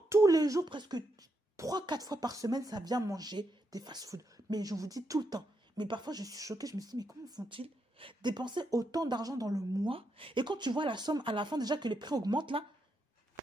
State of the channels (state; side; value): normal; both; correlation 0.81